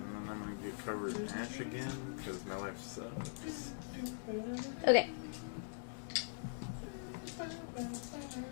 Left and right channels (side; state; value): right; silent; digital silence